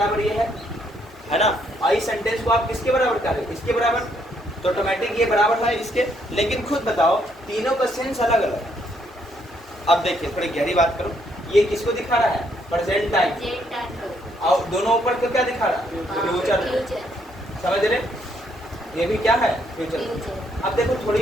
ये है ना। और इस सेंटेंस को आप किसके बराबर करें, इसके बराबर, तो ऑटोमेटिक ये बराबर है इसके। लेकिन खुद बताओ, तीनों का सेंस अलग अलग है। अब देखिए थोड़ी गहरी बात करो, ये किसको दिखा रहा है, प्रेजेंट टाइम, और दोनों ऊपर को क्या दिखा रहा है, फ्यूचर। समझ रहे, ये भी क्या है, फ्यूचर। अब देखो थोड़ी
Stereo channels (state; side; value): normal; both; correlation 0.72